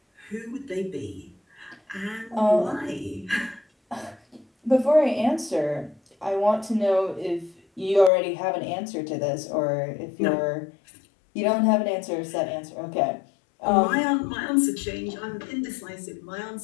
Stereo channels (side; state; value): right; drops out; at 8.1 s